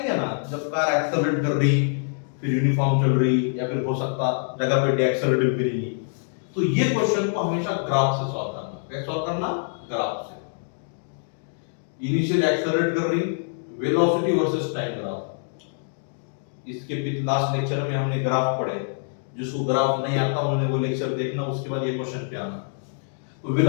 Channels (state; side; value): silent; right; digital silence